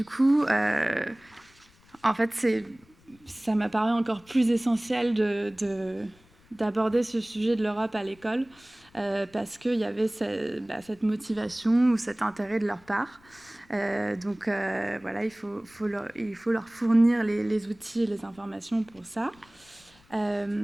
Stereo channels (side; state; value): left; noise; rumble, 29 dB below the sound